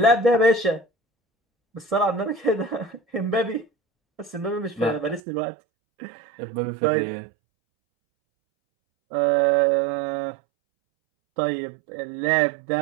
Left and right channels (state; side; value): drops out; left; at 5.2 s